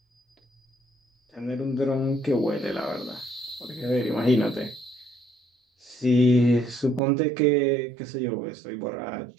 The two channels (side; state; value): left; drops out; at 7.0 s